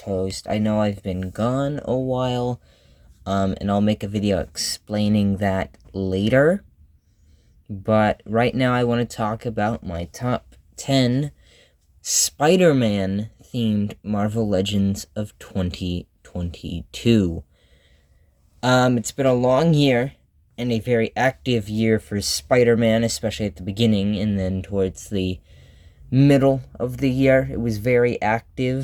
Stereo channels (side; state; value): both; identical; correlation 1.00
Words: Host. I know I've been gone a while, and I'll make a video explaining that later. But right now I want to talk about my top 10 Spider-Man themed Marvel Legends of 2022. It's been a long year and a very active year for Spider-Man, especially at the beginning and then towards the middle of the year. It was very